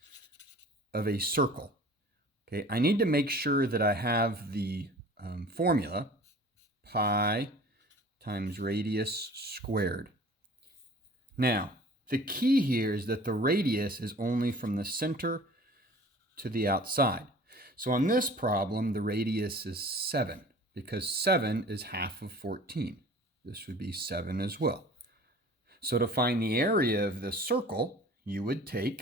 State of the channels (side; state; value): both; normal; correlation 0.45